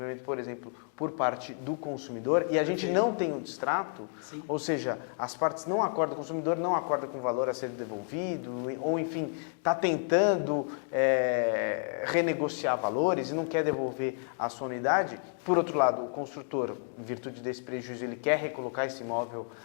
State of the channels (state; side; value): silent; right; 57 dB below the other